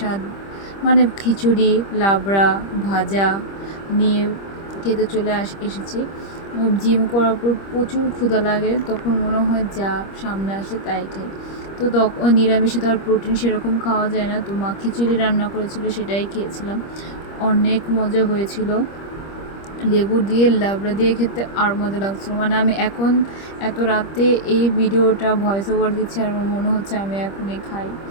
মানে খিচুড়ি, লাবড়া, ভাজা নিয়ে খেতে এসেছি। জিম করার পর প্রচুর ক্ষুধা লাগে, তখন মনে হয় যা সামনে আসে তাই খাই। তো তখন নিরামিষে তো আর প্রোটিন সেরকম খাওয়া যায় না, তো মা খিচুড়ি রান্না করেছিল, সেটাই খেয়েছিলাম। অনেক মজা হয়েছিল, লেবু দিয়ে লাবড়া দিয়ে খেতে আর মজা লাগছিলো। মানে আমি এখন এত রাতে এই ভিডিওটা ভয়েস ওভার দিচ্ছি আর আমার মনে হচ্ছে আমি এখনই খাই।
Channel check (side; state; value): right; late; 25 ms